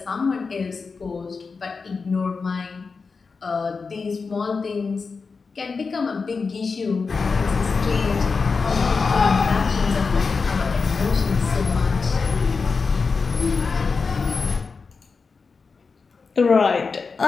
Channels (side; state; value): right; quieter; 4.7 dB